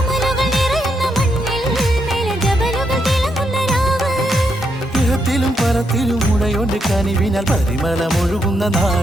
നിറയുന്ന മണ്ണിൽ മിനിജബലുകൾ തിളങ്ങുന്ന രാവ്. ഇഹത്തിലും പരത്തിലും ഉടയോന്റെ കനിവിനാൽ പരിമളമൊഴുകുന്ന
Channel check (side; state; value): both; normal; correlation 0.80